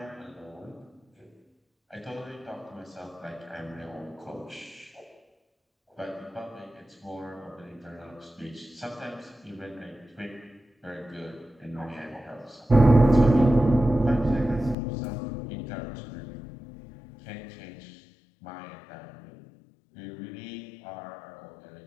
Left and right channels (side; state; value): right; drops out; at 14.8 s